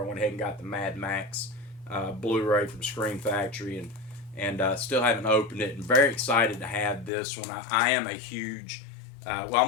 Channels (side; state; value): right; drops out; at 7.1 s